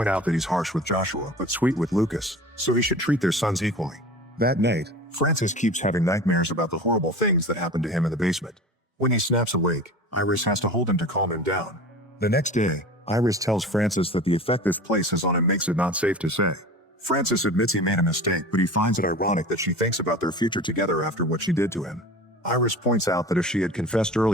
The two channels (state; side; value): normal; both; correlation 0.36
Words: out that he's harsh with Joshua but sweet with Lucas, so he should treat their sons equally. That night, Francis keeps having nightmares about the horrible things that happened to him in the basement. When he snaps awake, Iris has to hold him to calm him down. The next day, Iris tells Francis that the effect this place has on him makes it not safe to say. Francis admits he made a mistake, but he finds it ironic that she thinks about their future together after what she did to him. Iris points out that if she had confessed